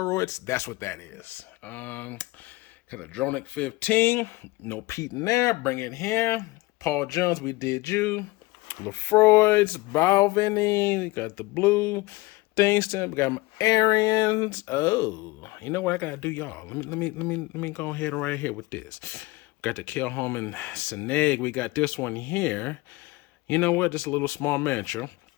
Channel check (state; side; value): quieter; right; 21.6 dB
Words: That's what that is. Got a Dronic 15, no peat in there. Bring it here. Paul Jones, we did you. Lefroy's, Balvenie, we got the blue, Thingston, we got my Arians. Oh, you know what I gotta do, y'all? Let me go ahead and right here with this. We got the Kilchoman Sanaig. We got this one here. You know what? Just a little small miniature.